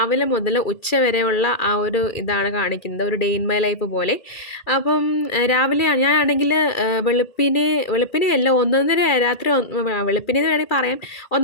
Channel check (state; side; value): late; right; 2.4 ms